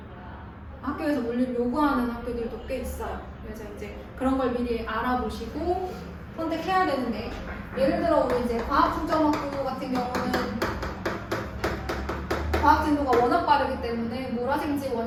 학교에서 물리를 요구하는 학교들도 꽤 있어요. 그래서 이제 그런 걸 미리 알아보시고 선택해야 되는데, 예를 들어 우리 이제 과학중점학교 같은 경우는 속도가 워낙 빠르기 때문에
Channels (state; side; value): identical; both; correlation 1.00